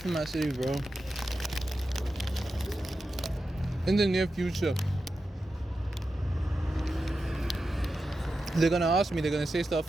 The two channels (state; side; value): normal; both; correlation 0.90